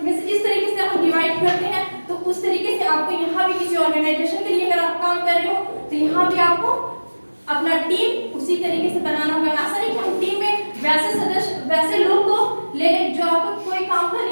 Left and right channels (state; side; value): inverted; both; correlation -1.00